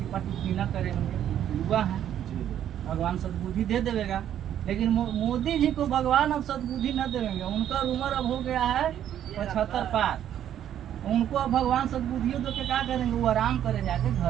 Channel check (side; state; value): left; quieter; 10.5 dB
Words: टिप्पणी न करेंगे, युवा हैं, भगवान सद्बुद्धि दे देगा। लेकिन मोदी जी को भगवान अब सद्बुद्धि न देंगे, उनका उम्र अब हो गया है 75 पार। उनको अब भगवान सद्बुद्धियों दो के क्या करेंगे? वो आराम करे जाके